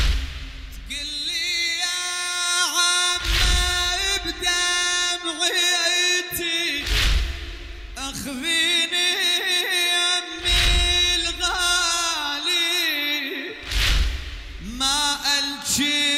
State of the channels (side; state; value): both; identical; correlation 1.00